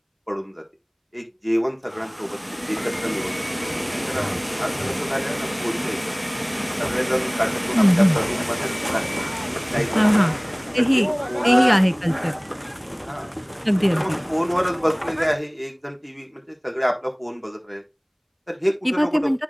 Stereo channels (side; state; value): both; identical; correlation 1.00